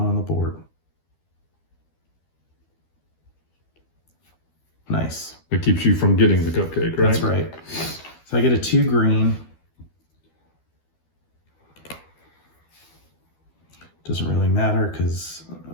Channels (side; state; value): right; late; 12 ms